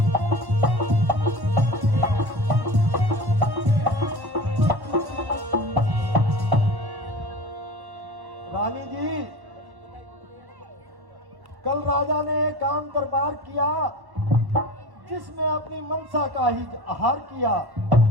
रानी जी कल राजा ने एक काम दरबार किया जिसमें अपनी मनसा का ही आहार किया।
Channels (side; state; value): left; late; 1.1 ms